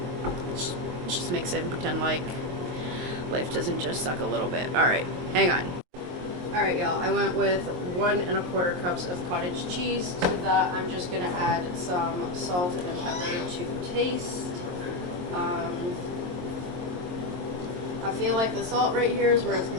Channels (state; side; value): late; left; 22 ms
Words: just mix it and pretend like life doesn't just suck a little bit. Alright, hang on. Alright, y'all, I went with 1 1/4 cups of cottage cheese. To that, I'm just gonna add some salt and pepper to taste. I feel like the salt right here is where it's